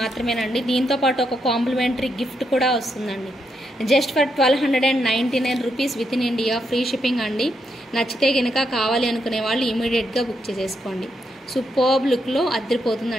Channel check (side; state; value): both; normal; correlation 0.80